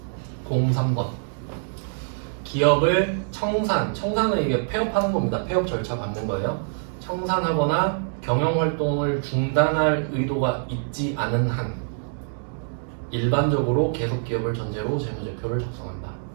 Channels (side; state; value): left; silent; digital silence